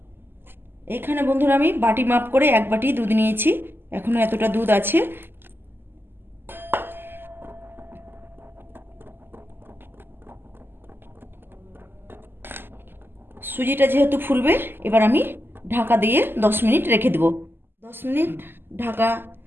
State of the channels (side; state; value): left; late; 0.10 ms